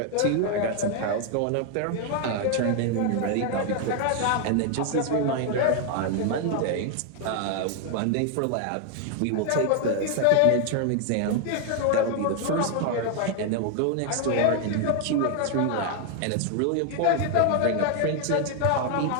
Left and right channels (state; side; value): different; both; correlation 0.00